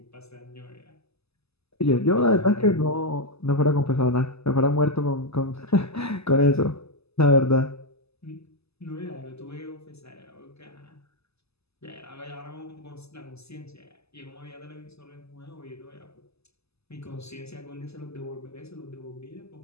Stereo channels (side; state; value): right; late; 0.79 ms